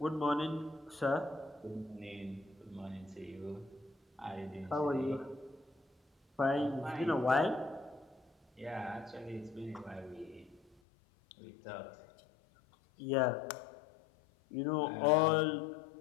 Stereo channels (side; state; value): right; drops out; at 10.8 s